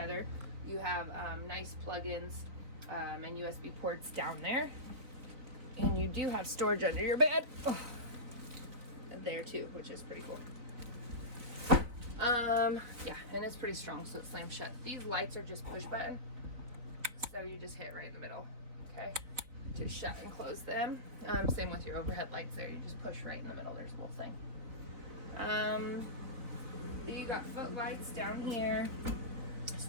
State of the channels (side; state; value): left; late; 4.0 ms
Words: You have nice plug-ins and USB ports down there, and you do have storage under your bed there too, which is pretty cool. Yeah, and it's pretty strong, so it slams shut. These lights are just push button, so you just hit right in the middle, okay? Just shut and close them. Same with your overhead lights there. You just push right in the middle. There's a little thing. You got footlights down here,